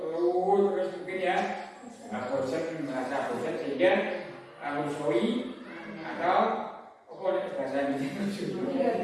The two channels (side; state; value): both; identical; correlation 1.00